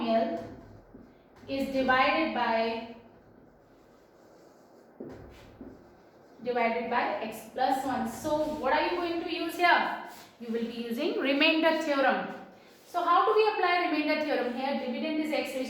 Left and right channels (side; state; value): both; identical; correlation 1.00